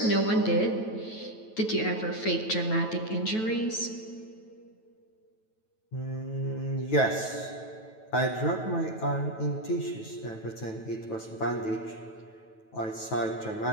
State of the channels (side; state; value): right; late; 9.2 ms